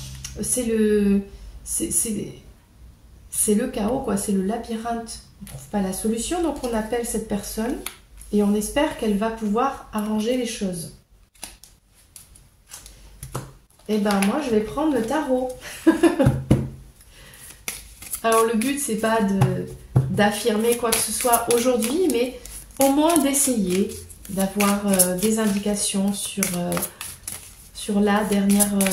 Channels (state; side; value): identical; both; correlation 1.00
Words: C'est le chaos, quoi, c'est le labyrinthe. On ne trouve pas la solution, donc on appelle cette personne et on espère qu'elle va pouvoir arranger les choses. Et ben moi je vais prendre le tarot. Alors le but c'est pas d'affirmer quoi que ce soit aujourd'hui, mais au moins d'essayer d'avoir des indications sur la